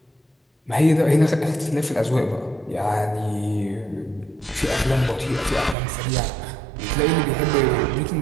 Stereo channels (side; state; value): left; drops out; at 5.8 s